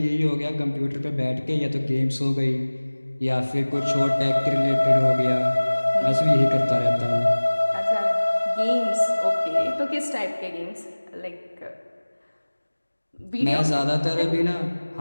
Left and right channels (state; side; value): inverted; both; correlation -1.00